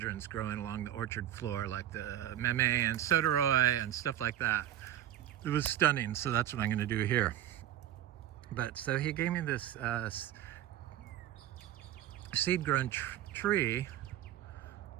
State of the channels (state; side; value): quieter; left; 12.0 dB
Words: growing along the orchard floor, like the meme and soderoy and stuff like that. It was stunning, so that's what I'm going to do here. But so he gave me this seed-grown tree.